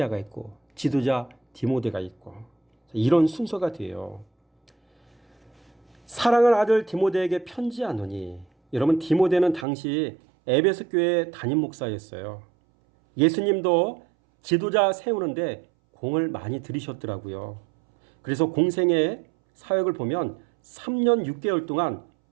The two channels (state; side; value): drops out; left; at 9.7 s